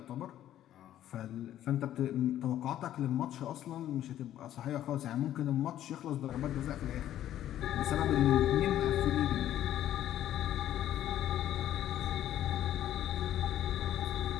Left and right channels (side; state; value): right; quieter; 12.1 dB